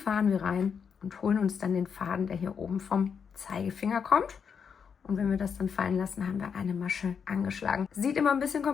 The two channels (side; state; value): right; quieter; 6.6 dB